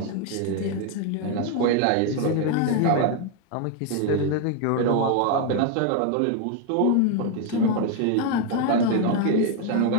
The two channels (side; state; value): both; different; correlation 0.01